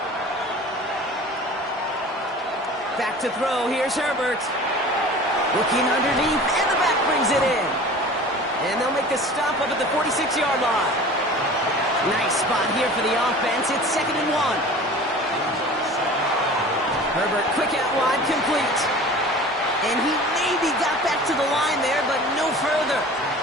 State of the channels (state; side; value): normal; both; correlation 0.41